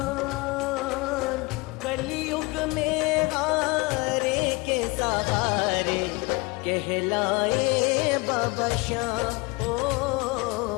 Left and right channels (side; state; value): right; quieter; 26.2 dB